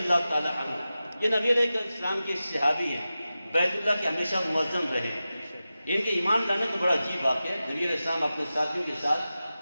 تعالی عنہ، یہ نبی علیہ السلام کے صحابی ہیں، بیت اللہ کے ہمیشہ معظم رہے، ان کے ایمان لانے کا بڑا عجیب واقعہ ہے۔ نبی علیہ السلام اپنے ساتھیوں کے ساتھ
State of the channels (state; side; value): inverted; both; correlation -0.94